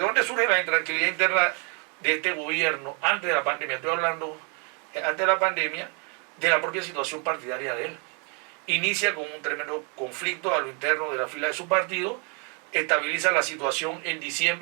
dónde surge la intranquilidad interna de este gobierno antes de la pandemia, estoy hablando antes de la pandemia, de la propia situación partidaria de él. Inicia con un tremendo conflicto a lo interno de la fila de su partido, estabiliza la situación en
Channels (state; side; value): quieter; left; 35.5 dB